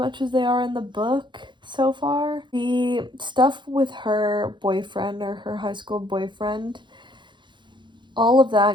as they are in the book so far. The stuff with her boyfriend, or her high school boyfriend, all of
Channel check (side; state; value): left; late; 0.23 ms